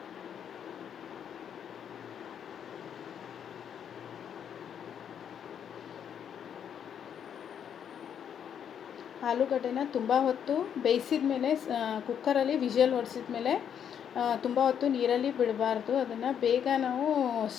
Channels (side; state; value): right; quieter; 8.5 dB